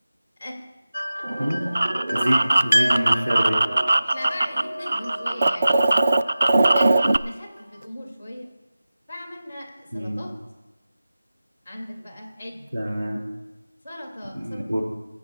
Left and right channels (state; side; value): inverted; both; correlation -0.95